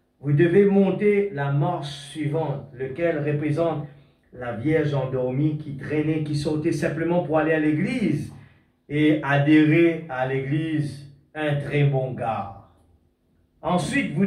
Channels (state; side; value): identical; both; correlation 1.00